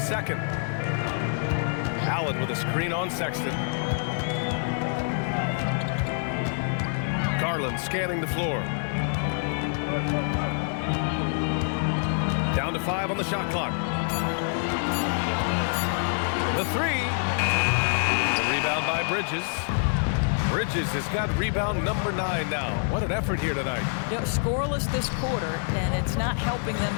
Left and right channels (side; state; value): right; silent; digital silence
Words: second. Allen with a screen on Sexton. Garland scanning the floor. Down to 5 on the shot clock. The 3. The rebound by Bridges. Bridges has got rebound number 9 now. What an effort here tonight. You know, scoreless this quarter, and it's not helping them